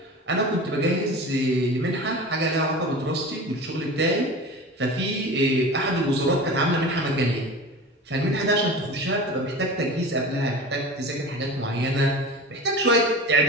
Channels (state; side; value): normal; both; correlation 0.33